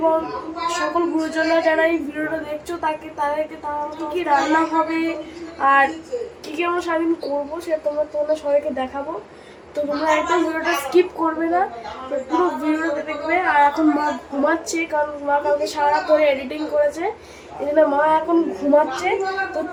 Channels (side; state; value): both; identical; correlation 1.00